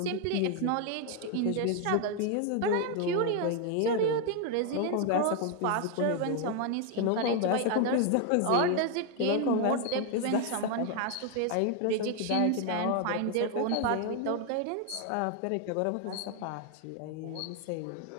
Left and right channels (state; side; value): different; both; correlation 0.00